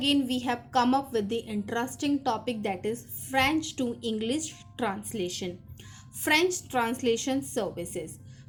we have come up with the interesting topic, that is French to English translation. French translation services.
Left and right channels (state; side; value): identical; both; correlation 1.00